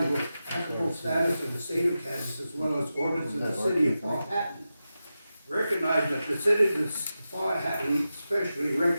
applicable status of the state of Kansas as well as ordinances of the city of Powhatan. Recognize that the citizens of Powhatan especially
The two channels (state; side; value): inverted; both; correlation -0.92